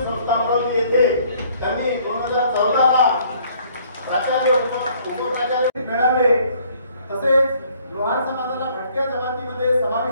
संस्था अमरावती येथे त्यांनी 2014 ला प्राचार्य उपप्राचार्य मिळाले. तसेच लोहार समाजाला भटक्या जमातीमध्ये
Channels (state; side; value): inverted; both; correlation -0.61